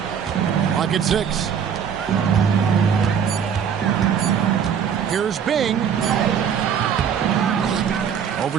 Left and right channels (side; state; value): left; quieter; 7.8 dB